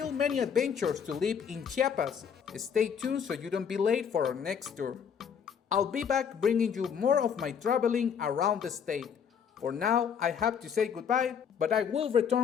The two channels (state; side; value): quieter; right; 7.4 dB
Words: many adventures to live in Chiapas. Stay tuned so you don't be late for our next tour. I'll be back bringing you more of my traveling around the state. For now, I have to say goodbye, but I will